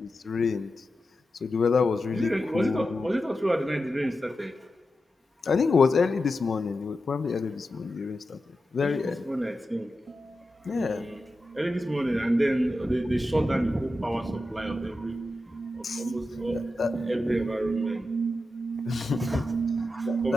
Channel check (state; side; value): normal; both; correlation 0.90